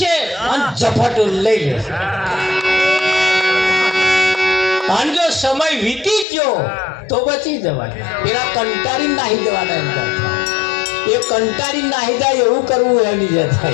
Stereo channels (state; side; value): drops out; right; at 6.2 s